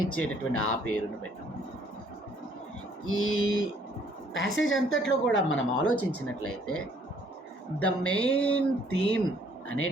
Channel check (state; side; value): normal; both; correlation 0.63